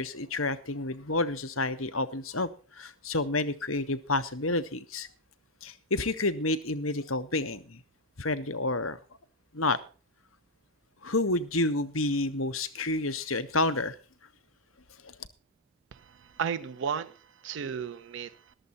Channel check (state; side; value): normal; both; correlation -0.07